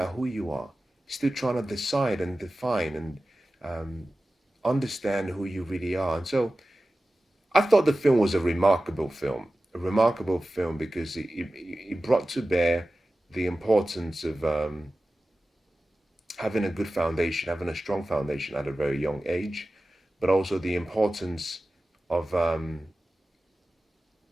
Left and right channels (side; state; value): both; normal; correlation 0.95